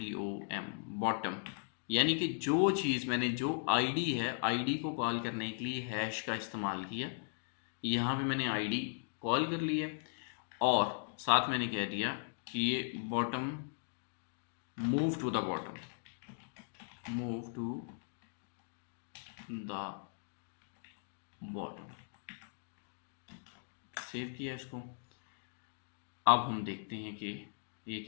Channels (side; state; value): right; silent; digital silence